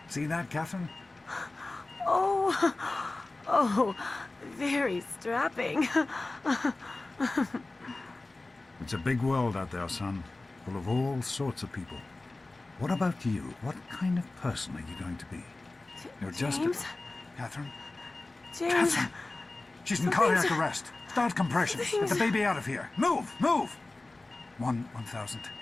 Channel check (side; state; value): right; quieter; 3.1 dB